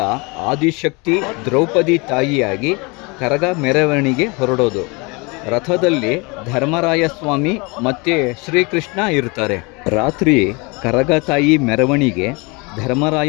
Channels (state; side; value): quieter; right; 28.1 dB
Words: ಆದಿಶಕ್ತಿ ದ್ರೌಪದಿ ತಾಯಿಯಾಗಿ ಕರಗ ಮೆರವಣಿಗೆ ಹೊರಡೋದು. ರಥದಲ್ಲಿ ಧರ್ಮರಾಯ ಸ್ವಾಮಿ ಮತ್ತು ಶ್ರೀಕೃಷ್ಣ ಇರ್ತಾರೆ. ರಾತ್ರಿ ಕರಗ ತಾಯಿ ಮೆರವಣಿಗೆ